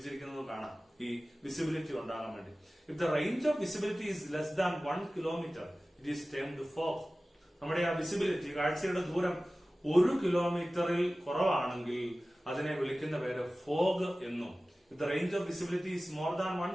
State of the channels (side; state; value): both; normal; correlation 0.97